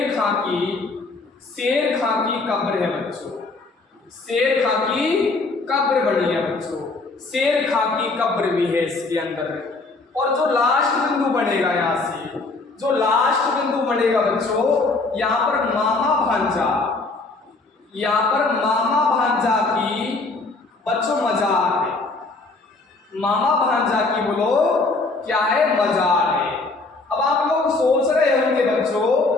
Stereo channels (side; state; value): right; quieter; 3.5 dB